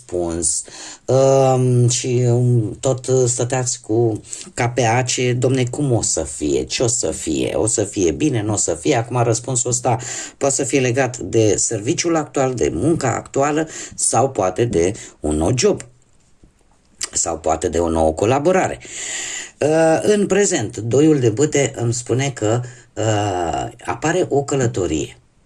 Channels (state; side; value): identical; both; correlation 1.00